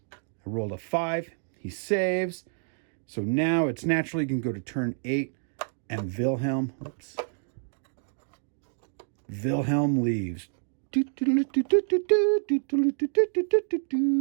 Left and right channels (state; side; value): silent; left; digital silence